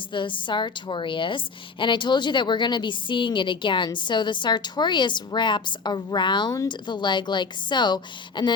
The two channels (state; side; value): quieter; right; 4.8 dB